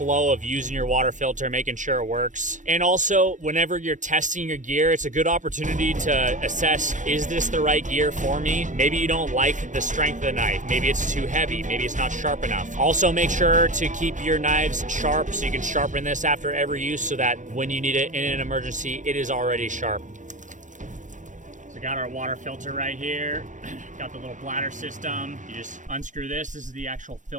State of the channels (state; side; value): late; left; 0.37 ms